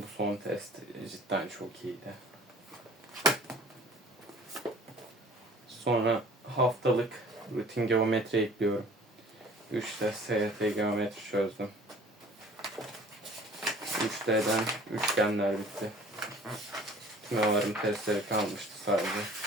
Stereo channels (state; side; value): normal; both; correlation 0.49